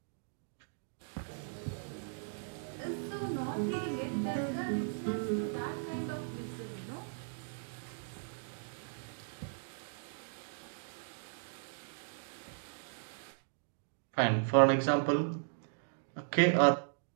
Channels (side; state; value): left; silent; digital silence